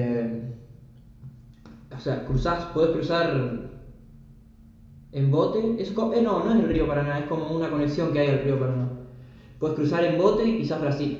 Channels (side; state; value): both; identical; correlation 1.00